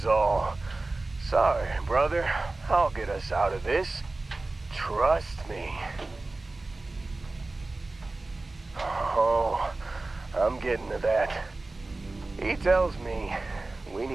all, "Sorry, brother, I'll get us out of this. Trust me." Oh, I'm getting to that. He tells me we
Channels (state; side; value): quieter; left; 3.2 dB